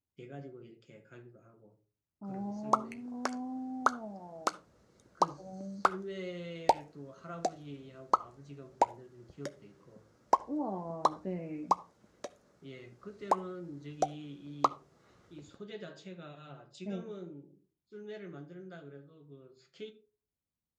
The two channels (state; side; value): identical; both; correlation 1.00